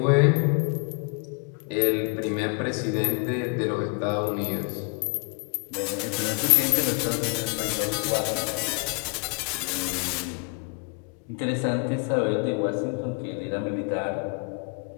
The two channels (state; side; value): quieter; right; 34.9 dB